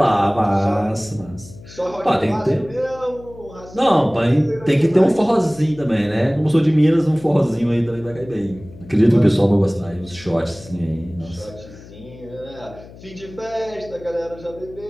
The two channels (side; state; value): left; noise; hum, 19 dB below the sound